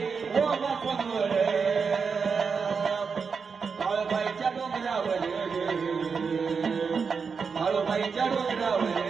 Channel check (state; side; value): quieter; left; 5.5 dB